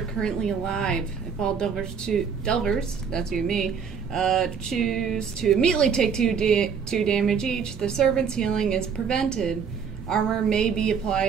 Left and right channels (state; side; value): quieter; left; 6.6 dB